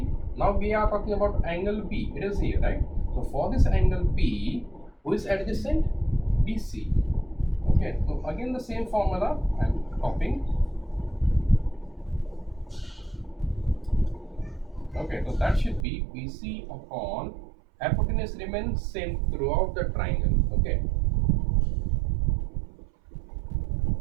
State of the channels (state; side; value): drops out; left; at 15.9 s